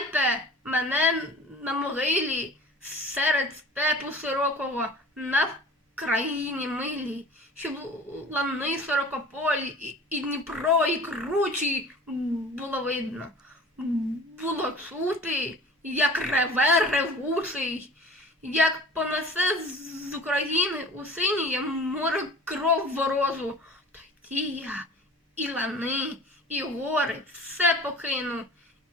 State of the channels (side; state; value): both; normal; correlation 0.43